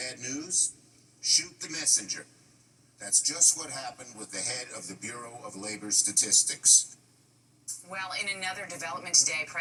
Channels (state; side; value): identical; both; correlation 1.00